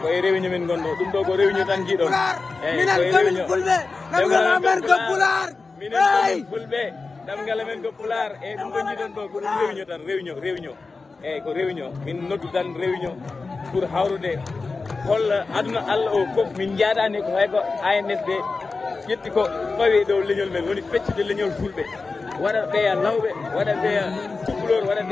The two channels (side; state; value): right; quieter; 4.1 dB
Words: koye réunion min gonɗo ɗum ɗo ko réunion tan jiiɗon eyyi koye réunion ɗemgal amen ko pular minen komin fulɓe ɗemgal amen ko pular eyyi ɗum ko jiiɗon ɗo ko ɗum réunion tan réunion eyyi ko réunion min noddu tan réunion pour hawrude holla aduna Allah o foof min jaadani ko hay ko ANSD ƴetti ko fawi dow leñol men woni feccude leñol fulɓe waɗa ɓeya lawɓe waɗa ɓeya cukalor waɗa